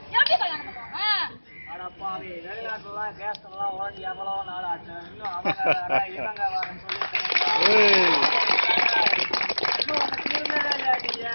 எப்படி கல்யாணம் பண்ணுவாங்க? அடப்பாவி, வெளிநாட்டுலாம் கேஸ்லாம் உடஞ்சி எவ்வளோ நாள் ஆச்சு. இன்னும் அவங்க இவங்க வரன்னு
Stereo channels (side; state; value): both; inverted; correlation -1.00